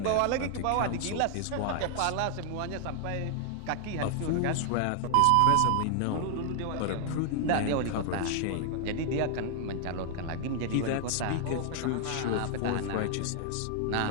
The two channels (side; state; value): both; different; correlation 0.00